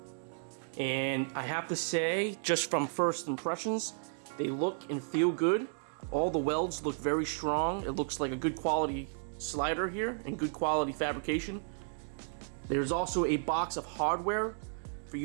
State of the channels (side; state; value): left; silent; digital silence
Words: and I have to say, just from first impressions, they look and feel good. All the welds look very strong. It looks like a good quality slider here and good quality fabrication. There's also a box of hardware for